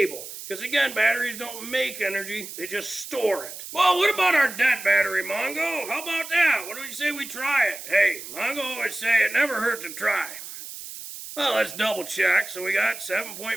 Because again, batteries don't make energy, they just store it. Well, what about our dead battery, Mongo? How about that? What do you say we try it? Hey, Mongo always say it never hurts to try. Well, let's double check. So we got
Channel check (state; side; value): noise; right; hiss, 11 dB below the sound